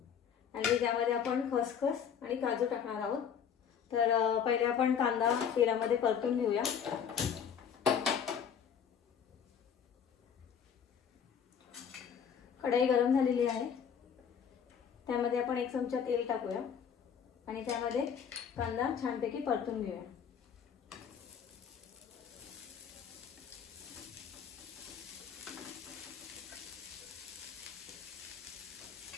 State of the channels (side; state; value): right; quieter; 7.6 dB